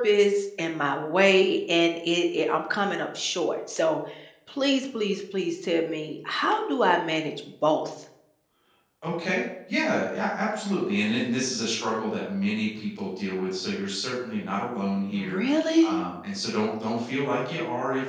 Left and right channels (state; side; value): identical; both; correlation 1.00